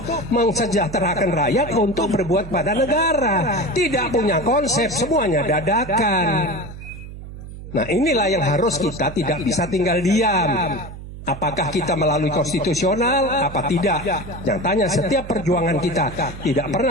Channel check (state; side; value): noise; right; hum, 13 dB below the sound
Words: mensejahterakan rakyat, untuk berbuat pada negara. Tidak punya konsep, semuanya dadakan. Nah, inilah yang harus kita tidak bisa tinggal diam. Apakah kita melalui konstitusional, apa tidak? Yang tanya, setiap perjuangan kita tidak